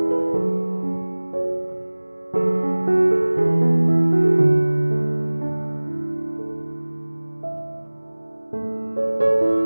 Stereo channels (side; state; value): both; inverted; correlation -1.00